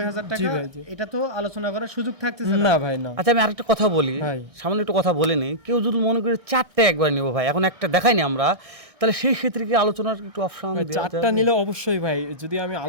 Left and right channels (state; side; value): late; left; 1.6 ms